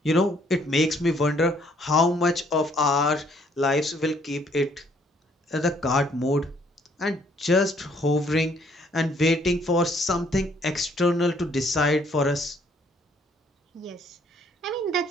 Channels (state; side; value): normal; both; correlation 0.65